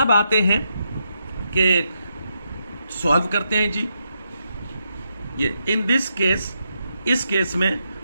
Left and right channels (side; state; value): both; inverted; correlation -0.82